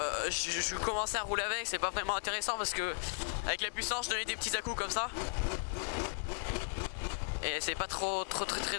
je commençais à rouler avec. C'est pas vraiment intéressant parce que avec la puissance je donnais des petits à-coups comme ça et c'est pas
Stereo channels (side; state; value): right; silent; digital silence